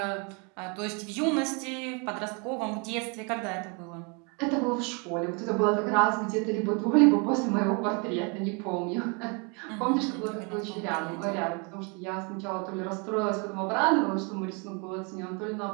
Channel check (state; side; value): quieter; left; 33.2 dB